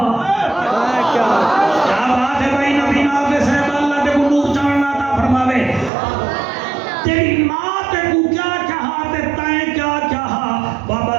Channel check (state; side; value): drops out; left; at 5.9 s